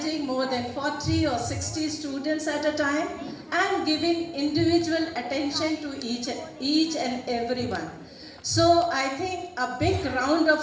more than 40 or 60 students at a time and giving individual attention to each and everyone. So I think a big round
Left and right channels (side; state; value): both; identical; correlation 1.00